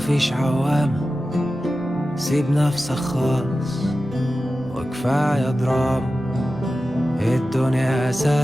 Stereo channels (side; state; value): right; noise; rumble, 23 dB below the sound